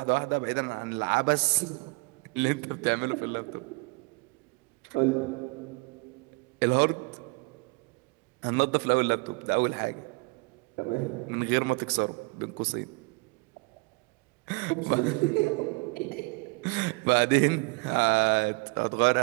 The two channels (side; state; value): left; quieter; 28.7 dB